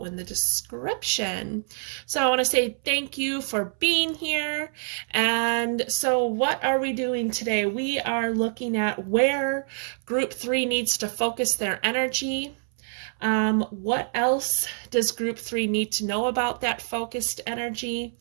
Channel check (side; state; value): left; silent; 61 dB below the other